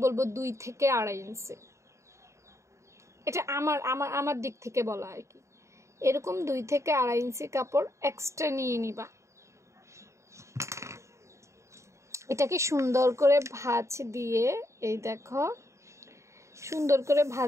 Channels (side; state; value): left; late; 0.14 ms